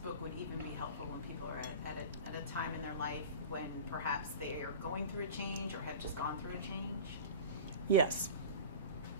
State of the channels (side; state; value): both; inverted; correlation -0.33